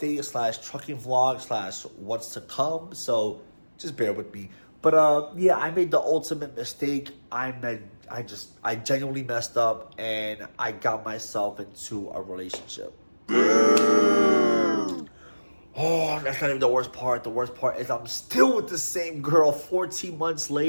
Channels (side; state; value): both; inverted; correlation -1.00